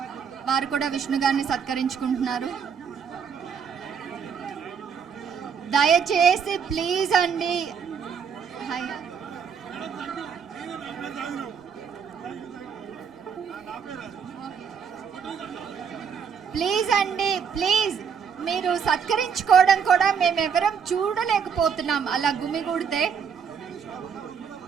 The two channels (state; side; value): quieter; left; 6.9 dB